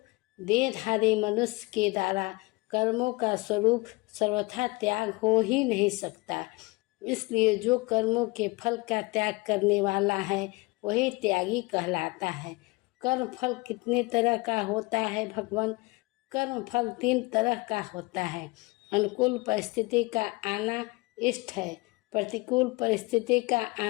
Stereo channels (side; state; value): right; quieter; 24.7 dB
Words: देहधारी मनुष्य के द्वारा कर्मों का स्वरूप सर्वथा त्याग हो ही नहीं सकता। इसलिए जो कर्मों के फल का त्याग करने वाला है, वही त्यागी कहलाता है। कर्म फल कितने तरह का होता है भगवान? कर्म फल 3 तरह का होता है। अनुकूल परिस्थिति का आना इष्ट है, प्रतिकूल परिस्थिति का